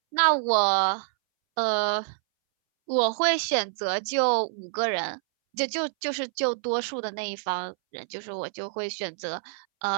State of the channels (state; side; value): silent; left; 60 dB below the other